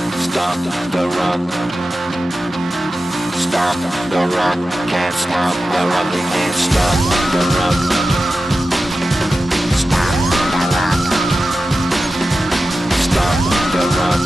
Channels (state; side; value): normal; both; correlation 0.93